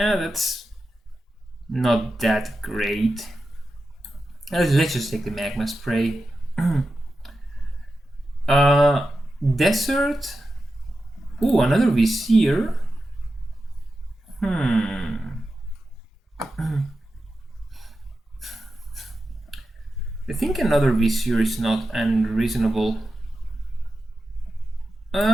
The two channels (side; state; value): both; normal; correlation 0.91